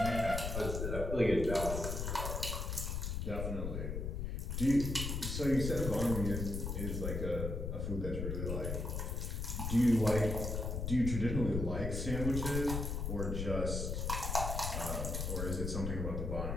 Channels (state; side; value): noise; left; rumble, 2 dB below the sound